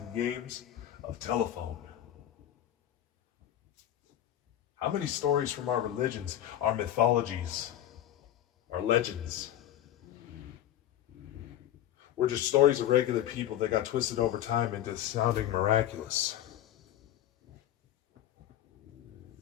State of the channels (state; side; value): quieter; right; 12.1 dB